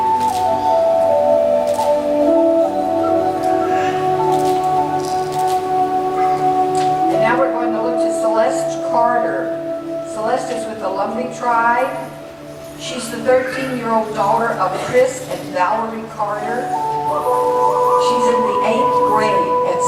13-year-old daughter of Chris and Valerie Carter. She's in the 8th grade at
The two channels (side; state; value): both; identical; correlation 1.00